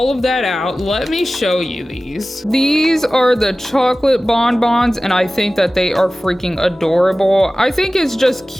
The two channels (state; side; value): normal; both; correlation 0.96